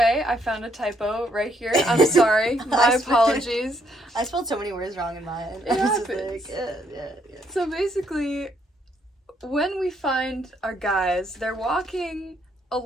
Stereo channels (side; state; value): both; normal; correlation 0.71